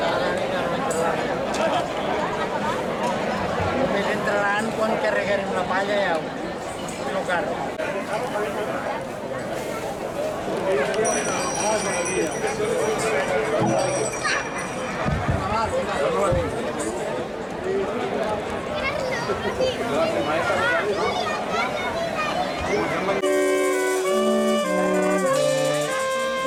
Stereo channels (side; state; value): both; identical; correlation 1.00